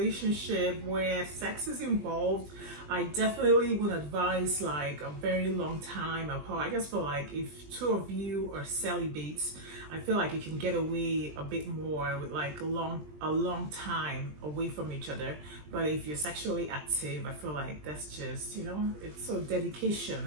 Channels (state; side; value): late; left; 20 ms